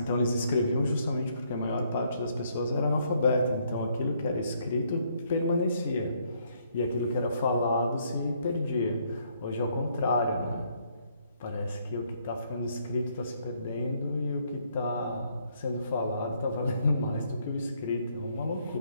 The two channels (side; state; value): both; inverted; correlation -0.70